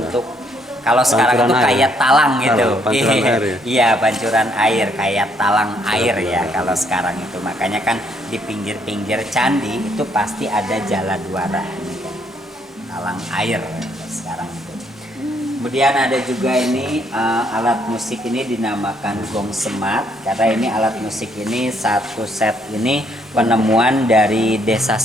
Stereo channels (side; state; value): both; normal; correlation 0.69